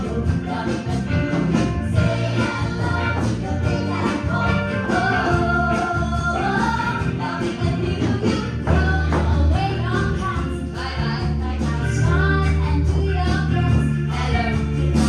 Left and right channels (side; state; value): both; identical; correlation 1.00